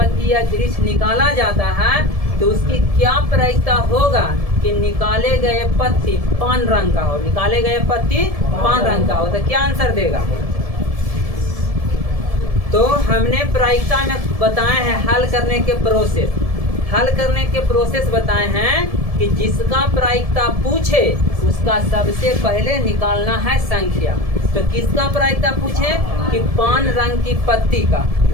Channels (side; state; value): left; late; 1.7 ms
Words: या वृक्ष निकाला जाता है तो उसकी क्या प्रायिकता होगा कि निकाले गए पत्ती पान रंग का हो? निकाले गए पत्ती पान रंग का हो तो क्या आंसर देगा? तो हमने प्रायिकता में बताए हैं हल करने के प्रोसेस। हल करने के प्रोसेस बताए हैं कि जिसका प्रायिकता पूछे उसका सबसे पहले निकालना है संख्या। तो किसका प्रायिकता पूछे? कि पान रंग की पत्ती का।